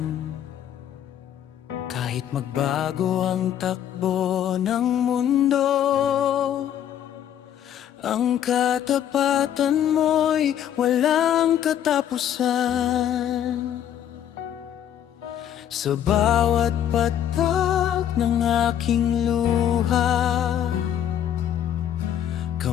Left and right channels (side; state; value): right; quieter; 10.2 dB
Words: Kahit magbago ang takbo ng mundo, ang katapatan mo'y walang katapusan. Sa bawat patak ng aking luha,